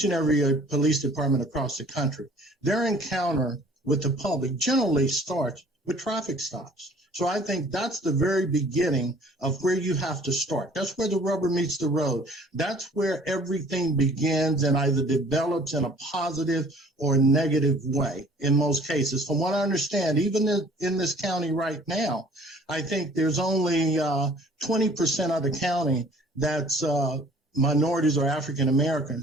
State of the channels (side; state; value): both; normal; correlation 0.53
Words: and every police department across the country, their encounter with the public generally starts with traffic stops. So I think that's the very beginning of where you have to start. That's where the rubber meets the road. That's where everything begins and either develops in a positive or negative way in most cases. From what I understand, even in this county right now, I think there's only 20% of the county that's minorities or African